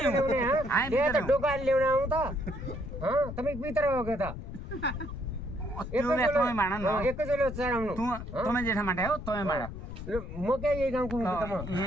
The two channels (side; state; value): left; noise; rumble, 9 dB below the sound